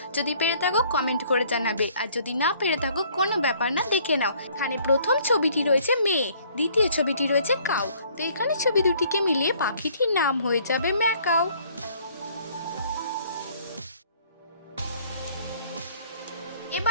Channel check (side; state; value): both; inverted; correlation -0.59